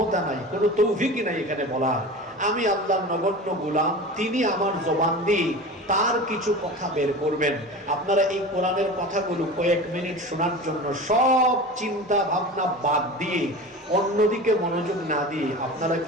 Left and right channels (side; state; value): both; normal; correlation 0.33